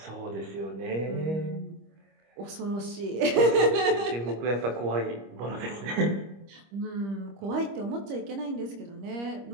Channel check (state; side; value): late; left; 25 ms